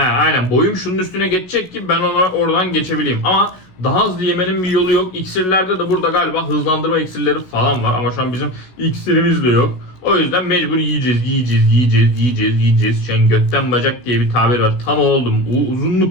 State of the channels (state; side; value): late; right; 16 ms